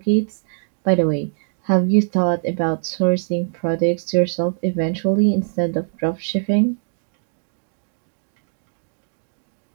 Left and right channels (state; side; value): silent; left; digital silence